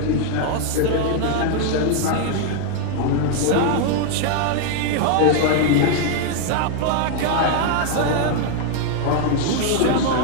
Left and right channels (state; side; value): different; both; correlation 0.00